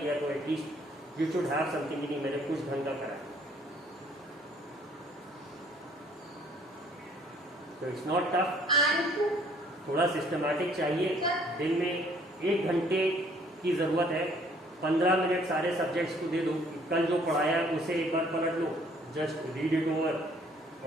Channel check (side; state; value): both; normal; correlation 0.60